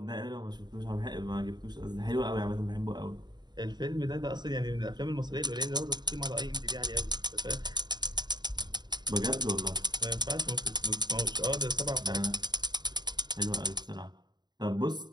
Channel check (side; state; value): left; late; 0.21 ms